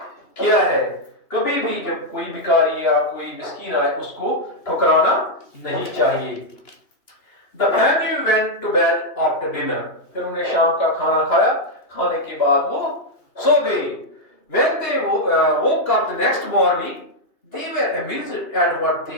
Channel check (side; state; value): right; late; 2.7 ms